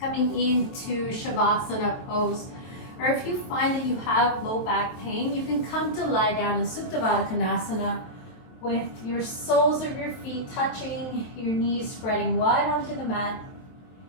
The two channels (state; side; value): late; right; 23 ms